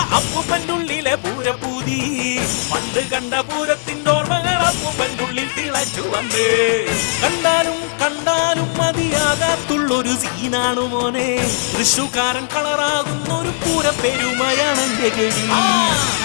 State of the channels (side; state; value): right; silent; digital silence